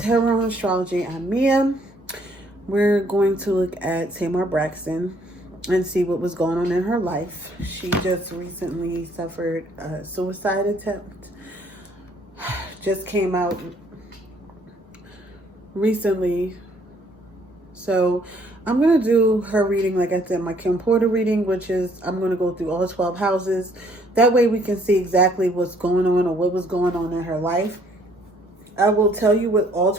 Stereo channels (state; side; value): normal; both; correlation 0.64